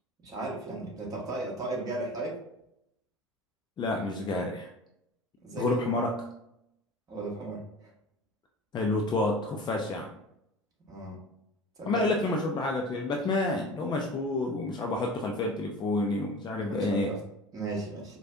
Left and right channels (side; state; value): both; normal; correlation 0.38